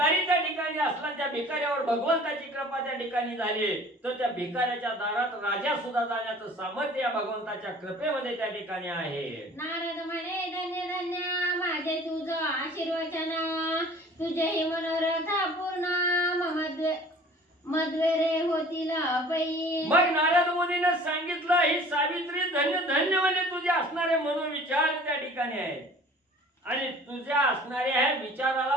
त्या ठिकाणी असला, त्या भिकाऱ्यावर भगवंताची कृपा त्या ठिकाणी झाली, तर त्या भिकाऱ्याच्या दारात राजा सुद्धा जाण्याचं सामर्थ्य या भगवंताच्या कृपेमध्ये त्या ठिकाणी आहे. नारद म्हणे धन्य धन्य माझे तुझं आशीर्वचन तुझे ही मनोरथ पूर्ण मद्वेरे होतील पै. मग नारद मुनीने सांगितलं, ही सावित्री धन्य धन्य म्हणजे तुझे असणारे मनोविचार त्या ठिकाणी आहेत आणि तुझ्या असणाऱ्या ह्या विचाराला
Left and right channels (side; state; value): both; normal; correlation 0.48